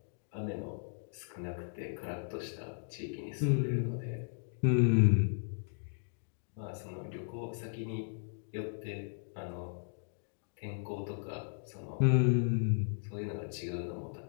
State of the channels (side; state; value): right; silent; digital silence